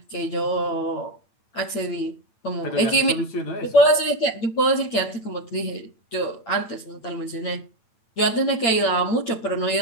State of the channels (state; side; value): late; right; 8.7 ms